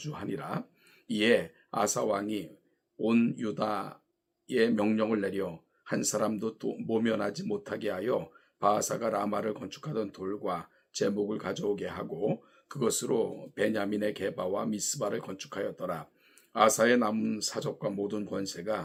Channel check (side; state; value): both; identical; correlation 1.00